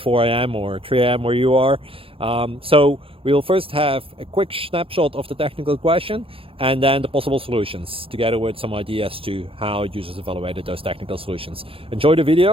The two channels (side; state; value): left; late; 0.27 ms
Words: a.m. or 3 a.m. where you are. So we'll first have a quick snapshot of the technical question and then the possible solutions, together with some ideas to how users evaluated those technical solutions. Enjoy the